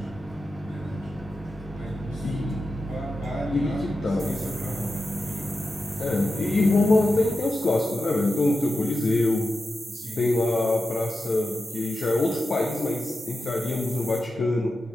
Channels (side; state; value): both; normal; correlation 0.90